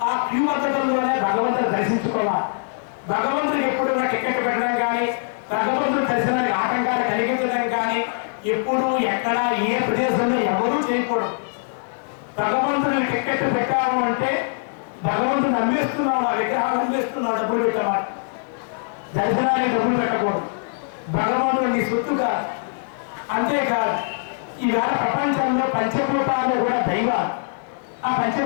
ఆ క్యూ పద్ధతుల్లోనే భగవంతుని దర్శించుకోవాలి. భగవంతుడికి ఎప్పుడు టికెట్ పెట్టడం కానీ, భగవంతుడి దర్శనానికి ఆటంకాలు కలిగించడం కానీ ఎప్పుడు ఎక్కడ ఏ ప్రదేశంలో ఎవరూ చేయకూడదు. భగవంతుడిని టికెట్ పెట్టాము అంటే భగవంతుని అమ్మేస్తున్నావు, ఆ విగ్రహాలు అమ్మేస్తున్నావు, డబ్బులు పెట్టమాట. దర్శనానికి డబ్బులు పెట్టకూడదు. భగవంతుడు నీ సొత్తు కాదు. అంతేకాదు, ఈవేళ ప్రపంచంలో పంచభూతాలు కూడా దైవాలు. ఆ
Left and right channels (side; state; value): right; silent; digital silence